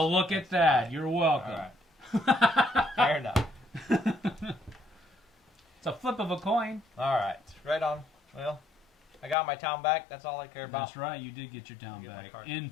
is. look at that. You're welcome. All right. Fair enough. It's a flip of a coin. All right. Right on. Well, I got my town back. That's all I care about. That's right. You did get your town Get my back. card.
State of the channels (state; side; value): drops out; right; at 9.3 s